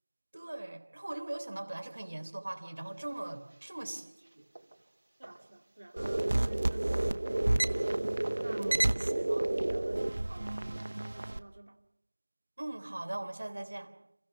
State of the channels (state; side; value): inverted; both; correlation -1.00